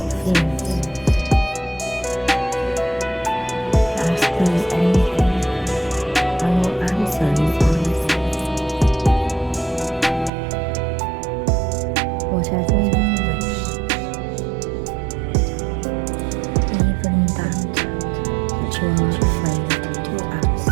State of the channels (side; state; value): left; drops out; at 10.3 s